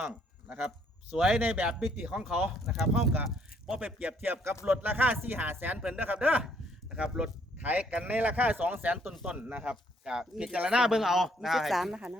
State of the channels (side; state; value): both; normal; correlation 0.67